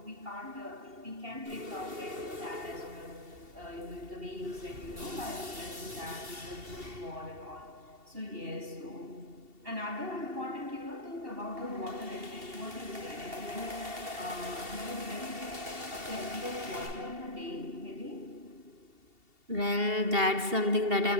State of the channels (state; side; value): late; left; 2.7 ms